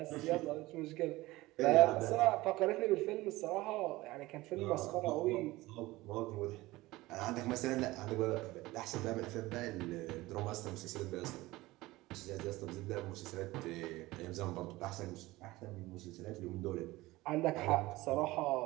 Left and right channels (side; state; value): left; quieter; 19.2 dB